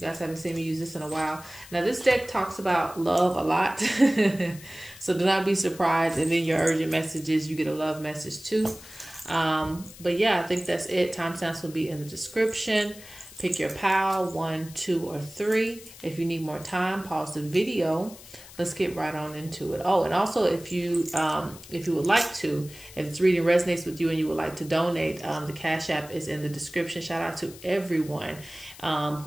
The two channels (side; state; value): left; noise; hiss, 18 dB below the sound